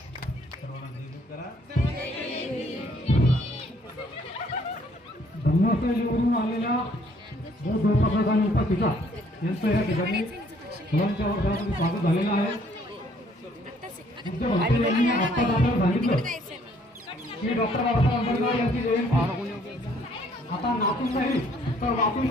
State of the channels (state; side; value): normal; both; correlation 0.63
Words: धम्मस्थळीवरून आलेल्या दोन पिता यांचं या ठिकाणी मुलांच्या वर्गामध्ये स्वागत झालेलं आहे. तुमच्या भक्तांनी यांनी आत्ताच आपल्याला सांगितलं की डॉक्टर बाबासाहेब आंबेडकर यांची जयंती आता नाचून नाही तर वाचून